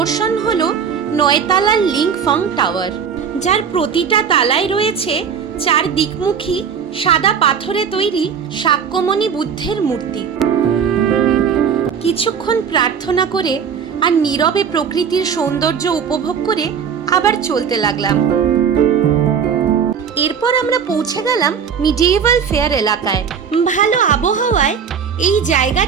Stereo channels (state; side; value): quieter; left; 7.1 dB